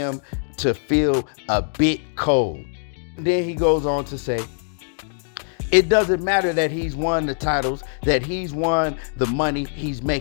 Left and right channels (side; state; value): right; silent; digital silence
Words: to feel a bit cold. Then he goes on to say, it doesn't matter that he's won the titles, that he's won the money he's